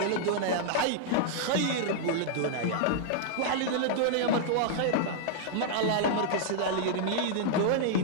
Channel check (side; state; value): both; different; correlation -0.01